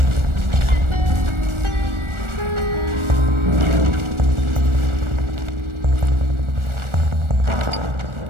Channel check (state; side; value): late; left; 1.4 ms